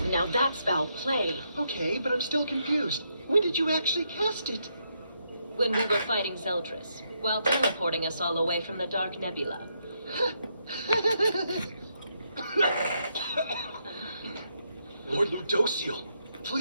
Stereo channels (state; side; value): inverted; both; correlation -0.78